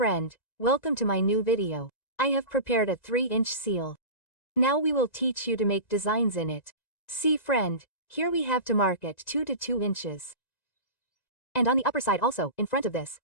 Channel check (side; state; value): right; late; 1.9 ms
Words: welcome to my new video. I have prepared a 3-inch seal. Now we will teach you to make designs in it. See friend, here we have to mark it 2 to 2 inches. And on the upper side also, in front of this,